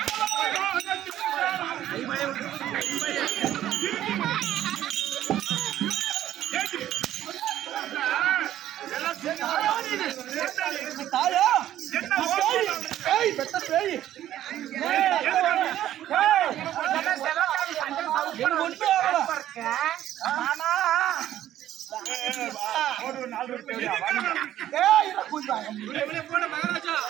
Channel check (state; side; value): quieter; left; 12.4 dB